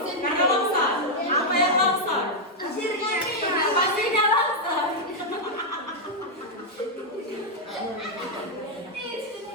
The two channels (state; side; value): normal; both; correlation -0.02